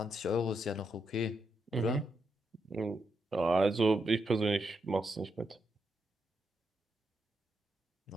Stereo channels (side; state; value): both; normal; correlation 0.82